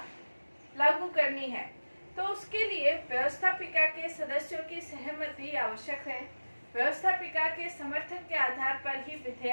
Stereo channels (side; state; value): both; inverted; correlation -1.00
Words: लागू करनी है, तो उसके लिए व्यवस्थापिका के सदस्यों की सहमति आवश्यक है। व्यवस्थापिका के समर्थन के आधार पर ही